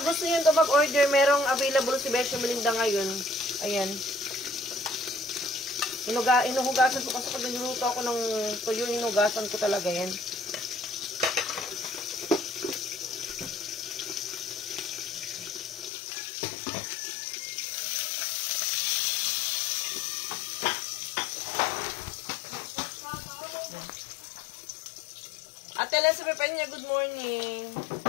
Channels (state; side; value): drops out; right; at 15.9 s